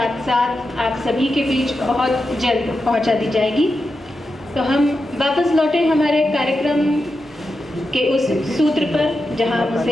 साथ आप सभी के बीच बहुत जल्द पहुंचा दी जाएगी। तो हम वापस लौटे हमारे कार्यक्रम के उस सूत्र पर जहां हम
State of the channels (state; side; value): normal; both; correlation 0.89